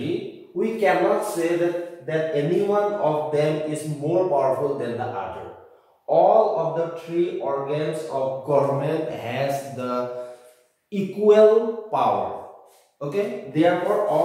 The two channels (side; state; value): both; identical; correlation 1.00